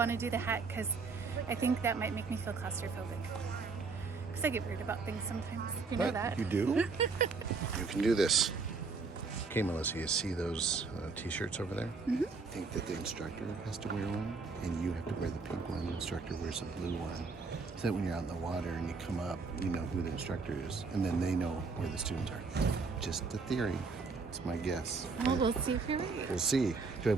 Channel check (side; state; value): left; quieter; 4.4 dB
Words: to do the hat because I think that might make me feel claustrophobic. Because I get worried about things sometimes. You know that? You do? You can do this. Okay, Melissa, you see those t-shirts over there? Mm-hmm. I think that the instructor has to wear one, and you have to wear the pink one. The instructor wears the blue one. So that when you're out in the water and you come up, you know who the instructor is, and then they know where the students are. Just a theory. It's my guess. Oh, we'll see if you're right. We'll see. Do I